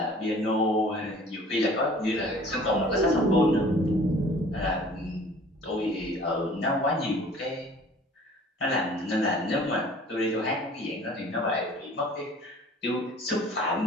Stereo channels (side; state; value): both; normal; correlation 0.49